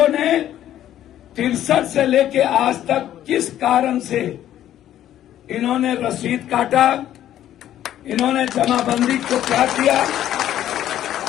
ने 63 से लेके आज तक किस कारण से इन्होंने रसीद काटा, इन्होंने जमाबंदी को क्या किया।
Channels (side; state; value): right; quieter; 11.9 dB